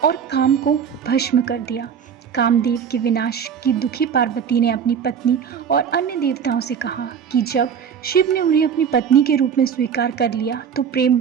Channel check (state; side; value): quieter; left; 7.5 dB